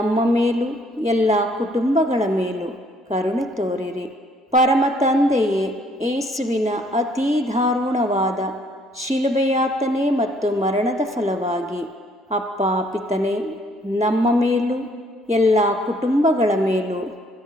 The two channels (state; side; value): normal; both; correlation 0.64